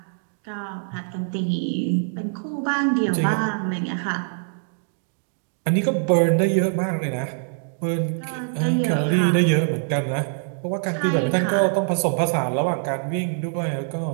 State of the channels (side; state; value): left; silent; digital silence